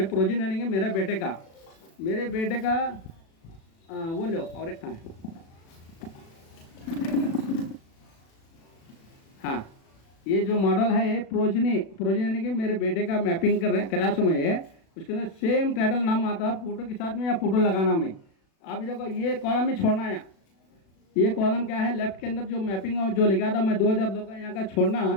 प्रोजेनी यानी कि मेरे बेटे का वो लो, और एक कहाँ है, हाँ ये जो मॉडल है प्रोजेनी यानी कि मेरे बेटे का मैपिंग करा सो मैं, उसके अंदर सेम टाइटल नाम आता है फोटो के साथ में या फोटो लगाना में। अभी देखो ये कॉलम में छोड़ना है, ये कॉलम क्या है लेफ्ट के अंदर जो मैपिंग जो लिखा था मैं 2002 का यहाँ का छोड़ना,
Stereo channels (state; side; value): late; right; 36 ms